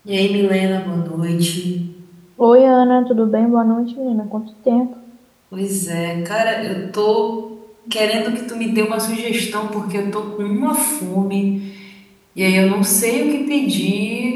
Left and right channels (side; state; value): both; identical; correlation 1.00